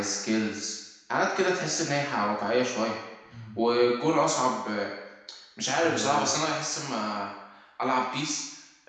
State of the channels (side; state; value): both; identical; correlation 1.00